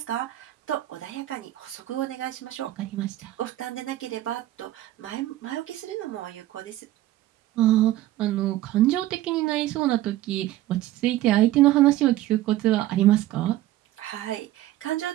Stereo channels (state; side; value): quieter; left; 15.0 dB